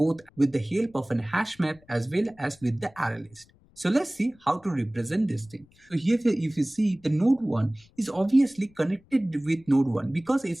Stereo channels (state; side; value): noise; left; rumble, 30 dB below the sound